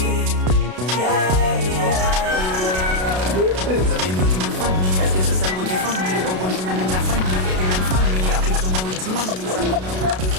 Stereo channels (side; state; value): left; late; 32 ms